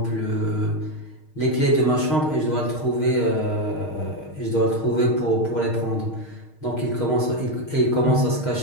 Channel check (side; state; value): right; late; 6.5 ms